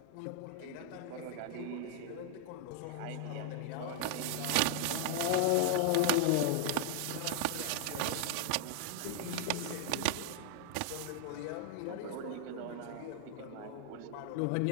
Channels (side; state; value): both; different; correlation 0.00